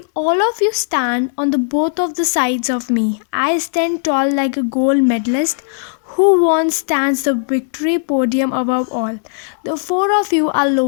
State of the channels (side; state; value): right; silent; 68 dB below the other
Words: all of you stand on the both of the sides of me, I stand tall like a gold medalist who won stands the victory podium above all. The 4 of you are